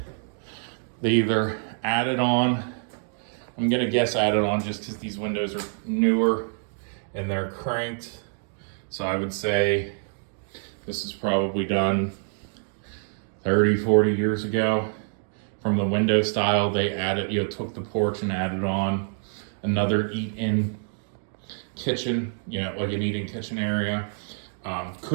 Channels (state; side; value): silent; left; 57 dB below the other